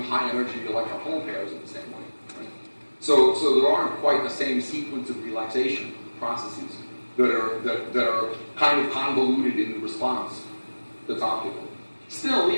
high energy electron-hole pairs in the same way. Right? So there aren't quite the same sequence of relaxation processes that are kind of convoluted in the response that's optical. Still,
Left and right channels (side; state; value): both; inverted; correlation -1.00